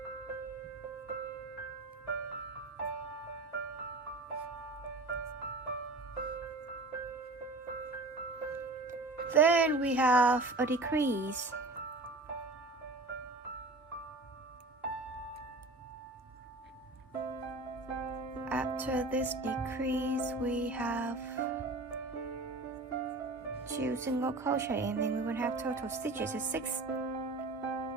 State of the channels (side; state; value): left; quieter; 3.1 dB